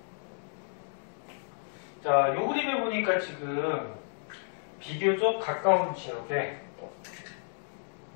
자, 요 그림을 보니까 지금 비교적 가까운 지역에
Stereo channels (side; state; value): right; silent; digital silence